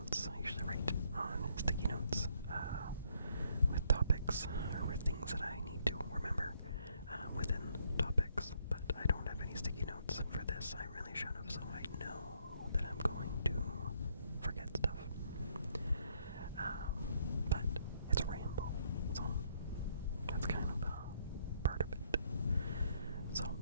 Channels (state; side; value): inverted; both; correlation -0.69